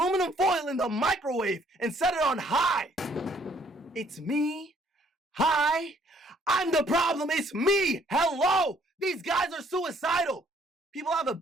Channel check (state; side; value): normal; both; correlation 0.63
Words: foil in the microwave and set it on high! It's me? Hi? I'm the problem, it's me! Hello! These guys are suicidal! People have a